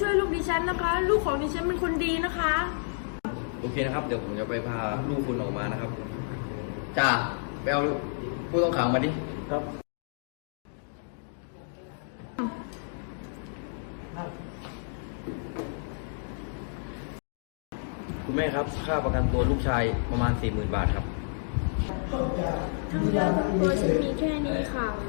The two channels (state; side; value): silent; right; digital silence